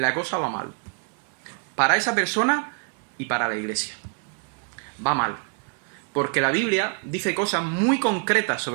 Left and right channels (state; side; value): quieter; left; 39.6 dB